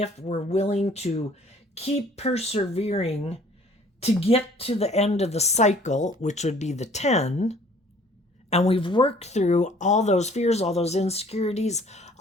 we're willing to keep persevering to get to the end of the cycle, which would be the 10. And we've worked through all those fears, all those insecurities,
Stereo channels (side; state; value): both; normal; correlation 0.55